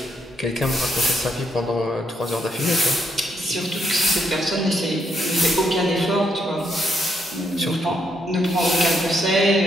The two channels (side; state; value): both; normal; correlation 0.76